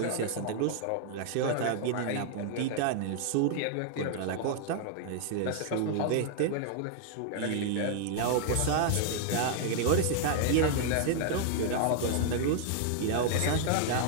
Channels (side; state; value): both; different; correlation 0.00